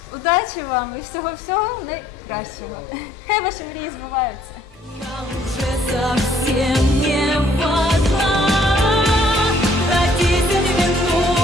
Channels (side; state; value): both; normal; correlation 0.63